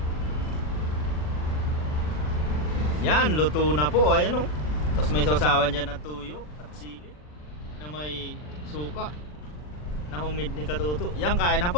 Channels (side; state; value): right; late; 40 ms